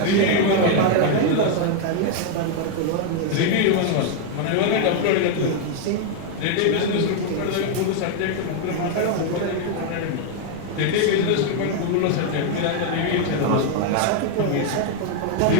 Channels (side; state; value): both; different; correlation 0.00